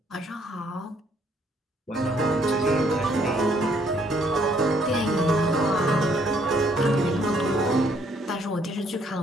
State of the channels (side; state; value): both; normal; correlation 0.67